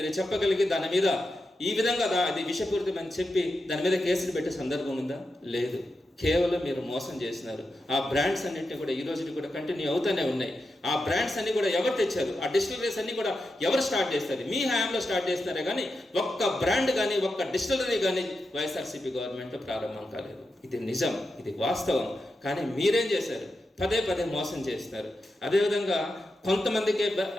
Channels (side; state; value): both; normal; correlation 0.88